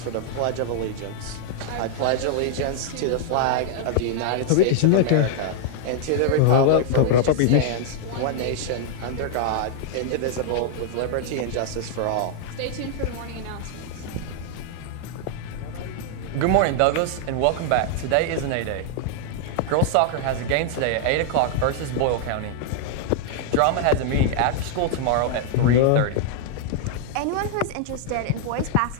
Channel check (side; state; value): both; different; correlation -0.01